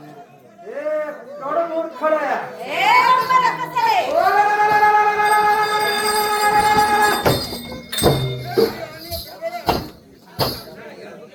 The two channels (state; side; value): identical; both; correlation 1.00